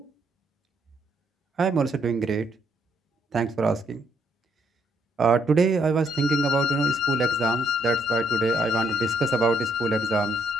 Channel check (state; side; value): normal; both; correlation 0.72